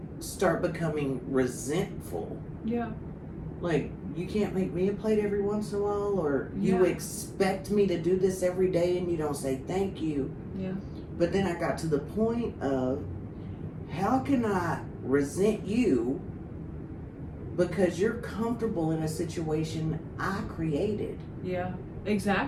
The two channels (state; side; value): identical; both; correlation 1.00